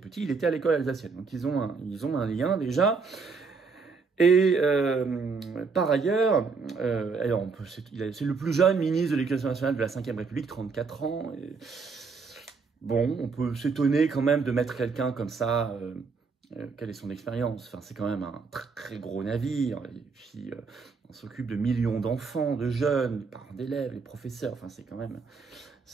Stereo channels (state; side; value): quieter; left; 4.8 dB